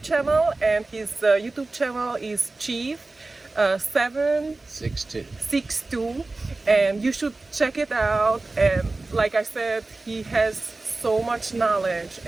channel, and his YouTube channel is Chief 762, 6'2". and you should check it out. And like I said, he has so much knowledge,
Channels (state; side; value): quieter; left; 3.3 dB